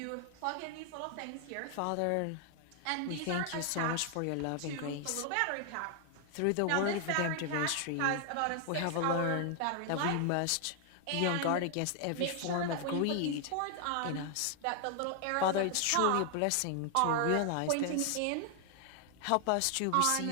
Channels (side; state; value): both; different; correlation 0.00